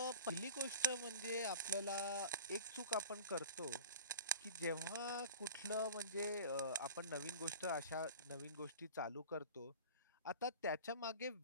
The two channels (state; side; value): inverted; both; correlation -0.38